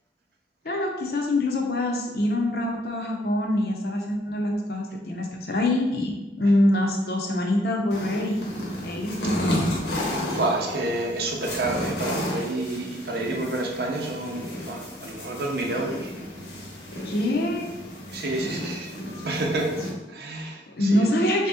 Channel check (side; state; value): both; normal; correlation 0.63